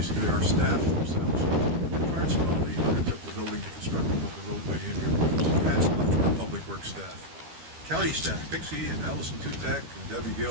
our staff themselves. Clarence Donnelly undertook the building and constructing of the roadway in here. So hats off to our public works staff. county staff, Pixie and Allison Tutak and Debbie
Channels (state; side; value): late; left; 12 ms